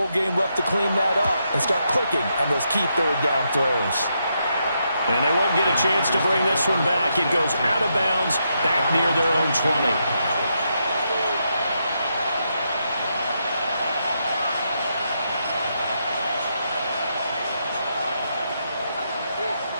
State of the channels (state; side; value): inverted; both; correlation -0.81